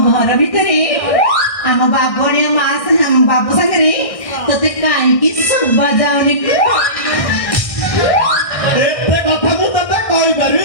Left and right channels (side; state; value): right; late; 1.6 ms